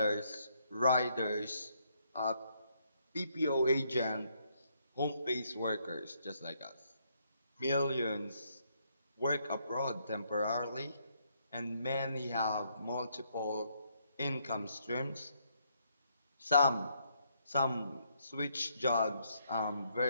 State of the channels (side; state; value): both; inverted; correlation -0.73